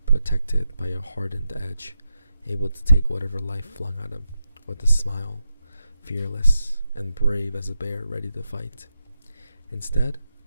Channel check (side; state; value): both; inverted; correlation -0.87